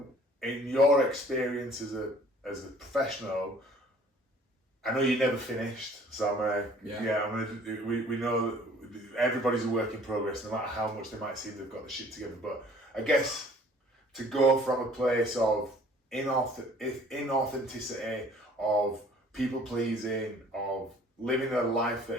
in your experience as a professional, I know you're never finished, so we know everybody's a work in progress, no matter how much they might seem they've got the shit together. But I guess to go from a place of inauthenticity, of people pleasing, of living a life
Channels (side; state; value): both; normal; correlation 0.54